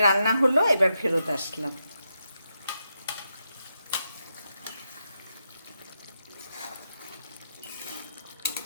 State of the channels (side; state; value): both; inverted; correlation -0.85